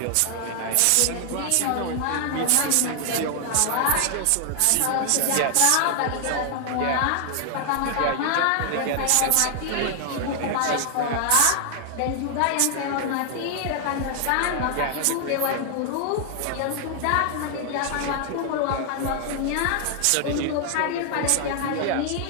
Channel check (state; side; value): different; both; correlation 0.00